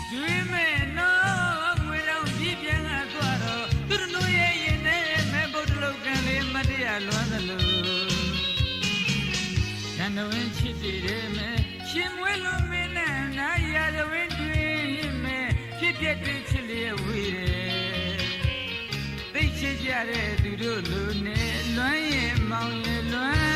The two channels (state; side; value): identical; both; correlation 1.00